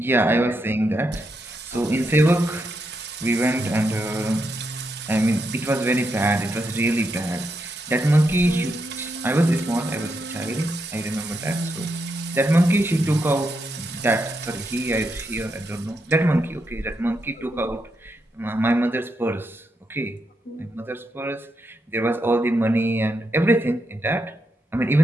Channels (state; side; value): normal; both; correlation 0.82